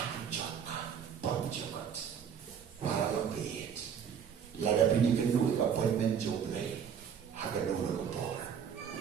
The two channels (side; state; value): left; quieter; 7.7 dB